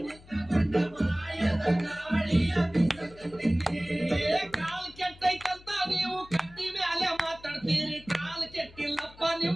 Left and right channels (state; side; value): noise; left; hum, 22 dB below the sound